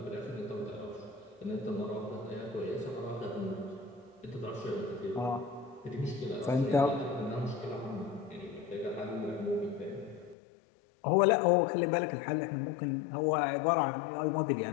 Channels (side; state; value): right; drops out; at 10.4 s